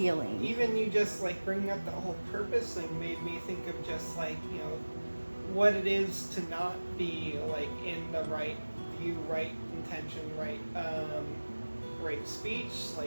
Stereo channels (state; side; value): inverted; both; correlation -1.00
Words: Even you just like bringing up the whole purpose thing made me think of just like, you know, what it is to not be like in the right view, right intention, right speech.